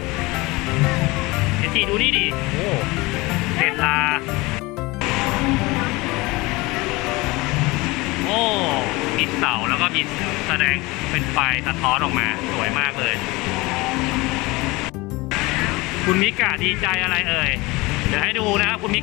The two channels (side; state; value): right; quieter; 22.9 dB